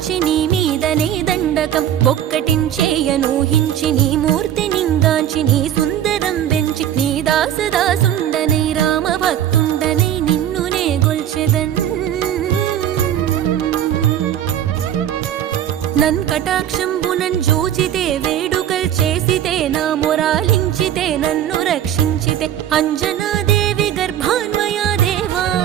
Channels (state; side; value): quieter; left; 10.6 dB